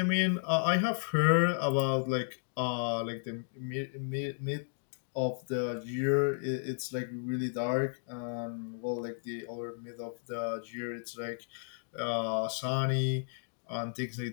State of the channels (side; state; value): right; silent; digital silence